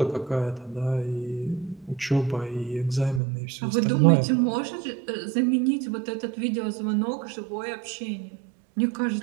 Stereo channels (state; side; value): drops out; left; at 3.2 s